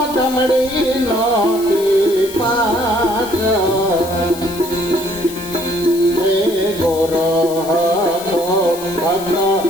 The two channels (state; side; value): noise; left; hiss, 14 dB below the sound